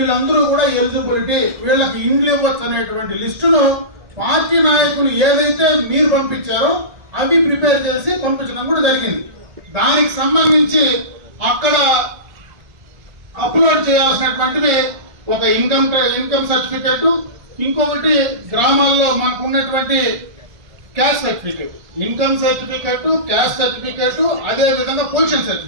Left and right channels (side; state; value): left; late; 1.4 ms